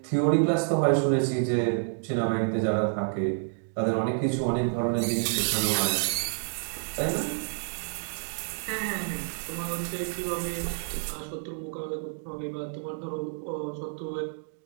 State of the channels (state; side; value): silent; left; digital silence